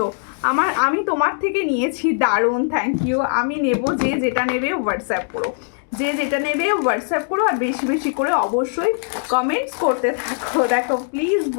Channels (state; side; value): silent; right; 65 dB below the other